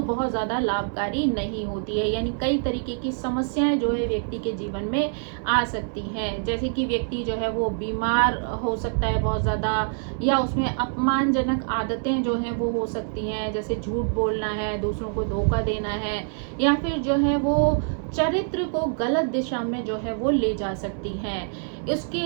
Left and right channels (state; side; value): silent; left; digital silence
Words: बहुत ज़्यादा लाभकारी नहीं होती है, यानी कई तरीके की समस्याएं जो है व्यक्ति के जीवन में आ सकती हैं। जैसे कि व्यक्ति जो है वो बीमार हो सकता है बहुत ज़्यादा, या उसमें अपमानजनक आदतें जो हैं वो हो सकती हैं, जैसे झूठ बोलना है, दूसरों को धोखा देना है, या फिर जो है वो चरित्र को गलत दिशा में जो है वो ले जा सकती हैं।